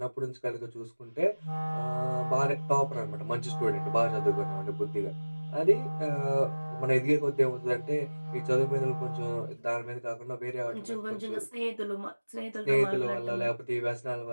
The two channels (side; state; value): both; inverted; correlation -1.00